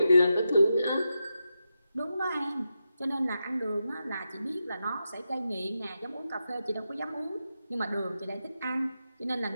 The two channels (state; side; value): inverted; both; correlation -0.88